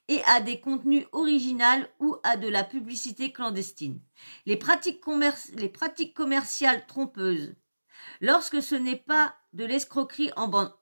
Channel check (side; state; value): both; inverted; correlation -1.00